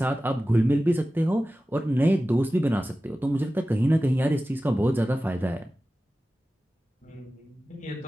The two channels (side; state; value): both; normal; correlation 0.95